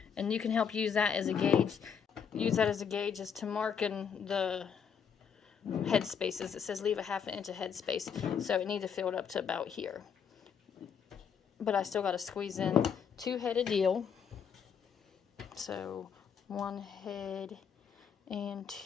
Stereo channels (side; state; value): right; quieter; 7.1 dB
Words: And you can help use that as a gauge. Use that as a gauge as to marking the head spaces. It says leave a ½ inch of head space. So it needs to fill it up to about here. But I still got to squeeze in 2 head of dill. So 1 head and